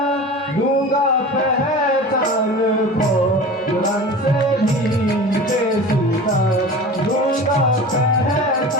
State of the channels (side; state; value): both; normal; correlation 0.35